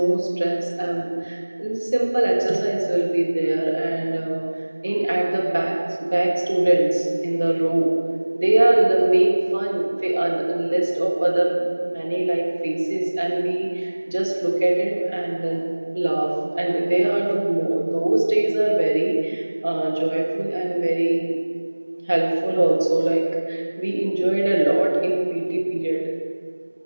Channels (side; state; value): both; inverted; correlation -1.00